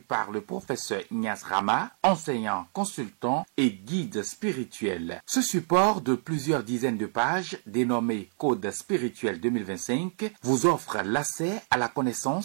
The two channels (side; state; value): left; silent; digital silence